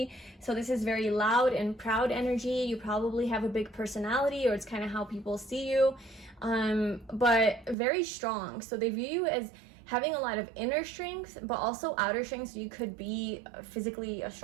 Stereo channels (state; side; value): drops out; left; at 7.8 s